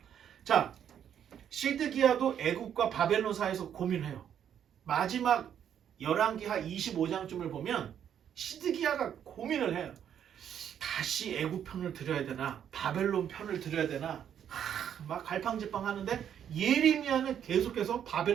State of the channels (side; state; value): left; quieter; 9.2 dB